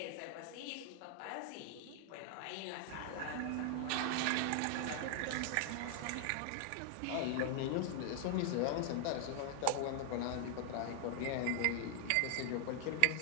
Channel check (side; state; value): both; different; correlation 0.00